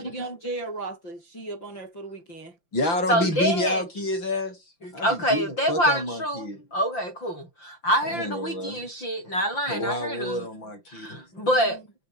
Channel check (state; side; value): late; right; 5.8 ms